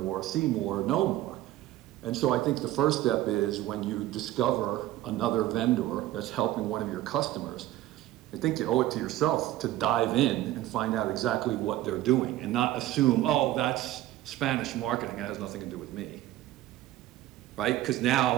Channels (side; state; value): left; quieter; 14.9 dB